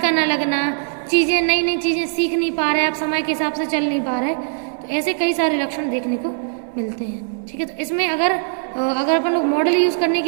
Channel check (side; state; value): left; silent; digital silence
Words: ना लगना, चीज़ें नई नई चीज़ें सीख नहीं पा रहे, आप समय के हिसाब से चल नहीं पा रहे, तो ऐसे कई सारे लक्षण देखने को मिलते हैं। ठीक है, तो इसमें अगर अपन लोग मॉडल यूज़ करने